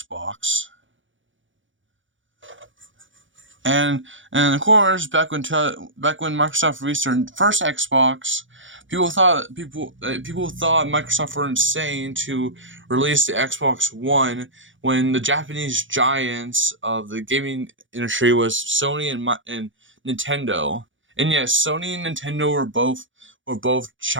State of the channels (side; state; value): left; late; 0.56 ms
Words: And of course, back when Microsoft released their first Xbox, people thought Microsoft were insane to release the Xbox One when the Japanese giants of the gaming industry was Sony and Nintendo. And yes, Sony and Nintendo were both